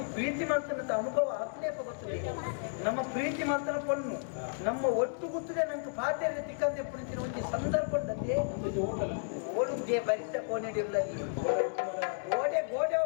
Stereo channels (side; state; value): right; silent; digital silence